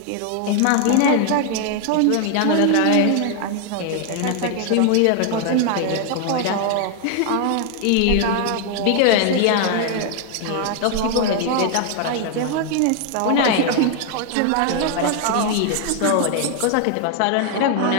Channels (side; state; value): both; different; correlation 0.00